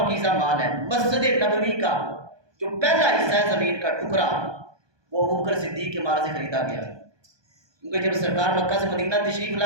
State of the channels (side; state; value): left; late; 1.2 ms